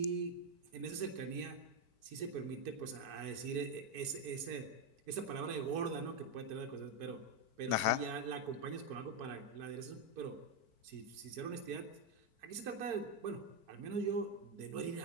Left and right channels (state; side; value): late; left; 4.5 ms